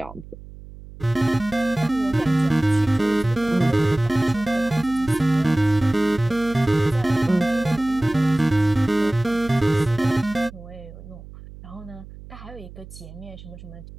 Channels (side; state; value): right; noise; hum, 17 dB below the sound